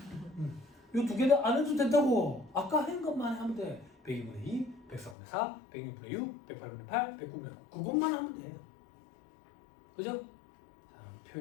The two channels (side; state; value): right; drops out; at 5.2 s